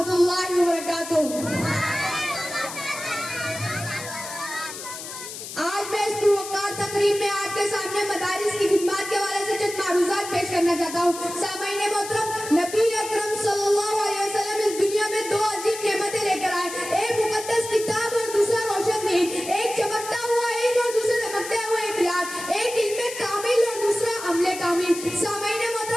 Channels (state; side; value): noise; left; hiss, 10 dB below the sound